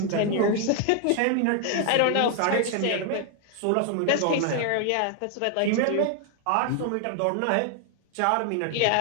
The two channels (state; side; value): different; both; correlation 0.00